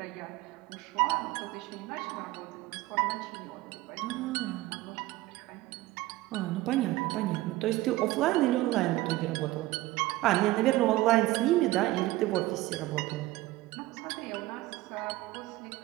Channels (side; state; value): left; quieter; 18.0 dB